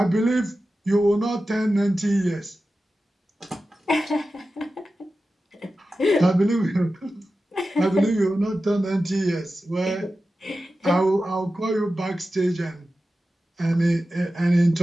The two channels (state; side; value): normal; both; correlation 0.93